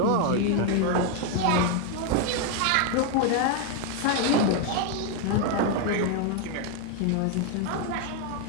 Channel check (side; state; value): both; different; correlation 0.01